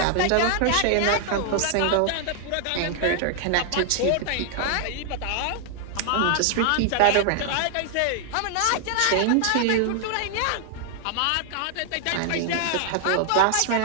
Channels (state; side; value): different; both; correlation 0.00